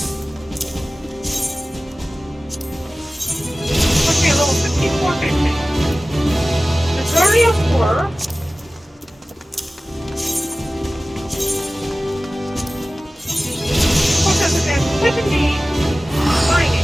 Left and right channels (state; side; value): normal; both; correlation 0.97